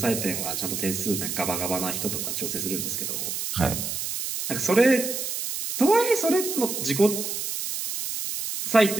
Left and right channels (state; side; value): noise; right; hiss, 4 dB below the sound